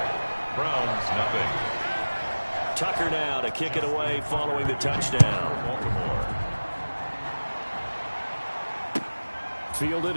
Browns nothing. Tucker now to kick it away following the touchdown. Baltimore. Fielded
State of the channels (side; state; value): both; inverted; correlation -1.00